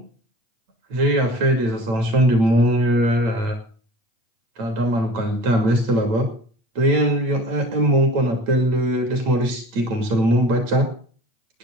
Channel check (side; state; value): left; late; 8.9 ms